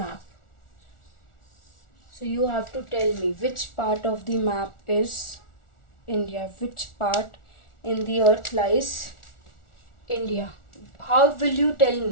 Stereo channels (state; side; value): late; right; 1.4 ms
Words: so you have to tell me which part of the map is India, which part in the earth lies India. How will you tell